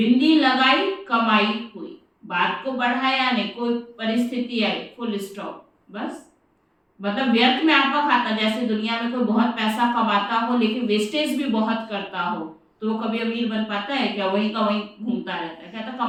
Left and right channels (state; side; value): identical; both; correlation 1.00